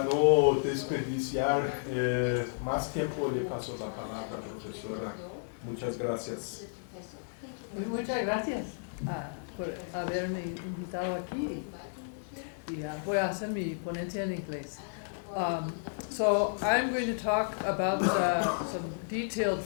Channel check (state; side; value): silent; right; digital silence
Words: no desperdiciar más tiempo, le paso la palabra, profesora. Muchas gracias. Muchas gracias por haberme invitado aquí. Y voy a hacer mi ponencia en inglés. So I'm going to talk about some detailed